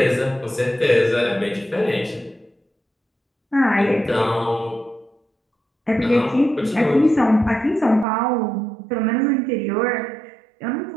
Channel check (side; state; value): left; drops out; at 8.1 s